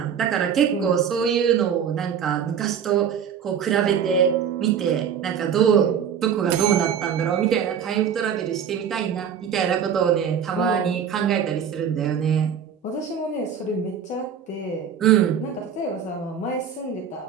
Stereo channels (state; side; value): quieter; left; 7.8 dB